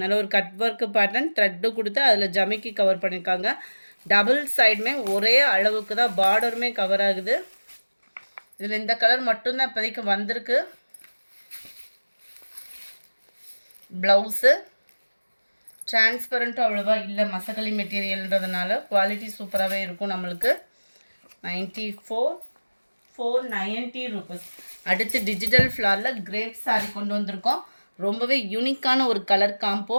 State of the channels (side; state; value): both; inverted; correlation -1.00